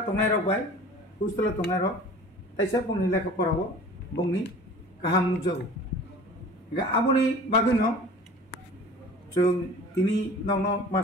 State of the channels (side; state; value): both; normal; correlation 0.43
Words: तंनाय रक बाय हस्टेल तंनाय रक ताइसा बुंनि लेखा फराव बुंनि गाहाम नुजागो गा आबनि बागैनो जों तिनि नंनो